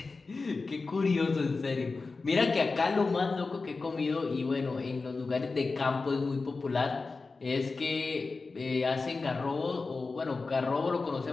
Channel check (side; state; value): right; quieter; 4.0 dB